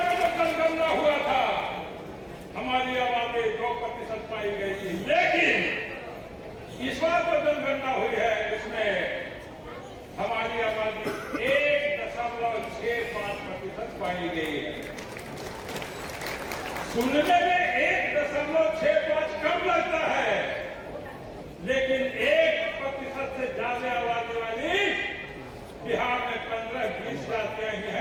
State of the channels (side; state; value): both; identical; correlation 1.00